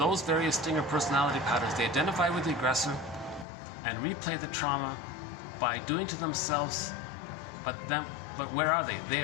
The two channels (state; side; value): drops out; right; at 3.5 s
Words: various stinger personality patterns, they identify with the aggressor and replay the trauma by doing to themselves, but where are they?